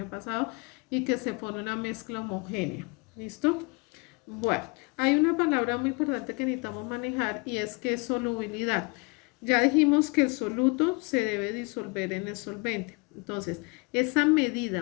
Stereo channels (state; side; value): quieter; right; 29.6 dB